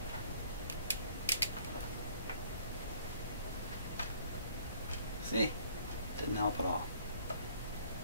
See? Didn't help at all.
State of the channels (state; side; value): inverted; both; correlation -0.58